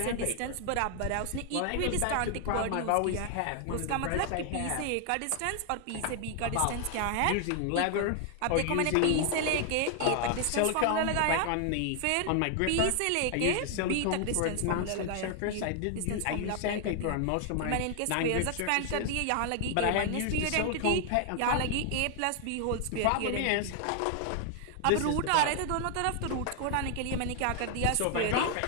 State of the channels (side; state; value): both; different; correlation 0.00